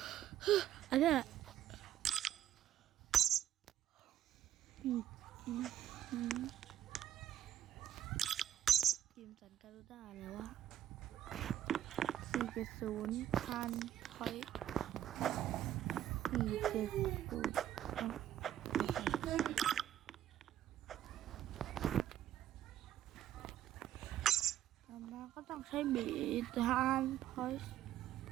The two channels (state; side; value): quieter; left; 11.4 dB